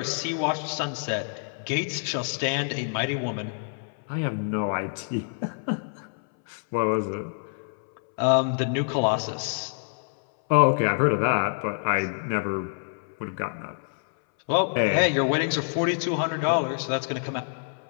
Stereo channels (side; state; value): right; silent; 60 dB below the other